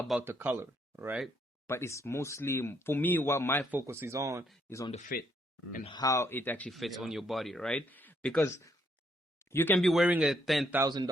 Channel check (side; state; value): both; normal; correlation 0.72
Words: the color, right? But it's mostly, for me, what my focus is on the fit and how it actually fits on your body, right? Because you can be wearing a